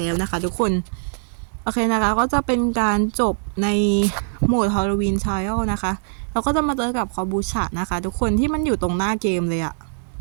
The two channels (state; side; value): silent; left; digital silence